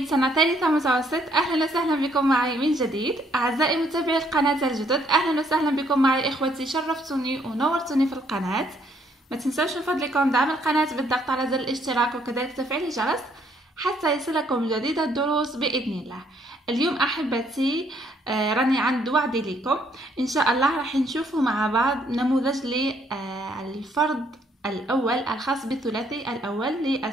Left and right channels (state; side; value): normal; both; correlation 0.68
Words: سنة ثالثة متوسط. أهلا وسهلا بكم معي من جديد. أعزائي متابعي القناة الجدد، أهلا وسهلا بكم معي إخوتي. شرفتوني ونورتوني في القناة. ما تنسوش من فضلكم دعم القناة بالضغط على زر الاشتراك وكذلك تفعيل الجرس حتى يصلكم جديد الدروس بإذن الله. اليوم أحبتي راني عند وعدي لكم إن شاء الله راح نشوفوا مع بعض نموذج للفرد الأول الخاص بالثلاثي الأول